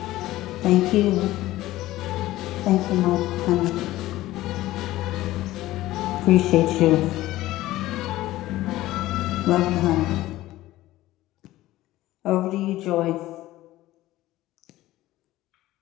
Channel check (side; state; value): right; quieter; 16.2 dB